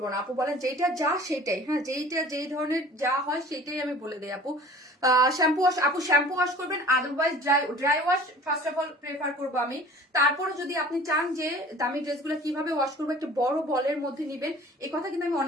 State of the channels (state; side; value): normal; both; correlation 0.46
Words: না আপু, বলেন যেটা যা সেটাই, হ্যাঁ, যেই ধরনের যা হয় সেটাই আমি বলে দিই আপু। শ্যাম্পু ওয়াশ আপু, শ্যাম্পু ওয়াশ করবেন, otherwise dry wash first of all prefer করবো আমি। তারপরে যদি আপনি চান যে দামি ড্রেসগুলো কিভাবে ওয়াশ করবো, একটা বড় বলের মধ্যে নিবেন। এই কথা কিন্তু আমি